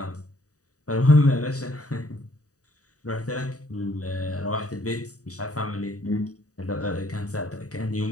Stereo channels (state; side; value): late; right; 0.66 ms